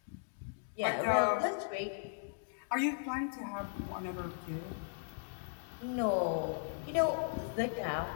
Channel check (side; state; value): right; silent; digital silence